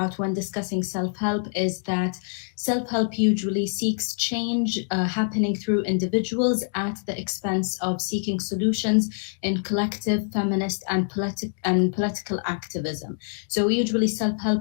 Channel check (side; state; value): right; silent; 62 dB below the other